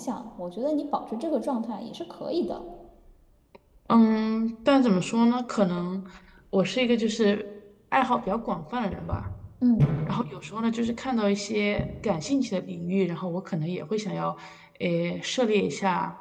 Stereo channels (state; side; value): identical; both; correlation 1.00